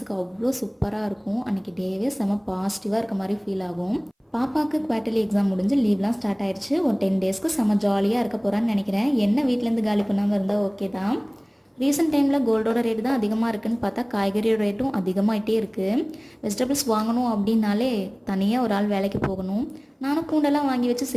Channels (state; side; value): identical; both; correlation 1.00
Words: அவ்வளோ சூப்பராக இருக்கும். அன்றைக்கி டேவே செம பாசிட்டிவாக இருக்க மாதிரி ஃபீல் ஆகும். பாப்பாவுக்கு குவார்ட்டர்லி எக்ஸாம் முடிஞ்சு லீவ்லாம் ஸ்டார்ட் ஆயிடுச்சு. ஒரு 10 டேஸ்க்கு செம ஜாலியாக இருக்க போகிறான்னு நினைக்கிறேன். என்ன வீட்டிலேருந்து காலி பண்ணாமல் இருந்தால் ஓகே தான். ரீசெண்ட் டைமில் கோல்டோட ரேட்டு தான் அதிகமாக இருக்குதுன்னு பார்த்தா காய்கறியோட ரேட்டும் அதிகமாகிட்டே இருக்குது. வெஜிடபிள்ஸ் வாங்கணும் அப்படின்னாலே தனியாக ஒரு ஆள் வேலைக்கு போகணும். நானும் பூண்டெல்லாம் வாங்கி வச்சு